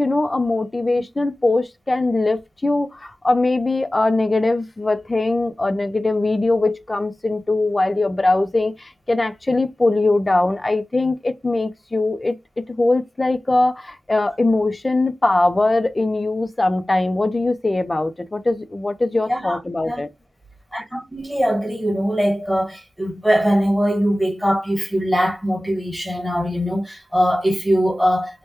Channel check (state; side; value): normal; both; correlation 0.97